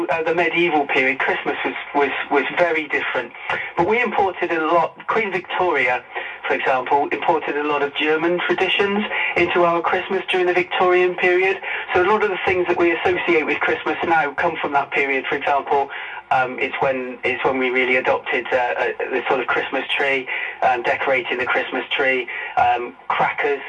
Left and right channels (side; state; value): both; identical; correlation 1.00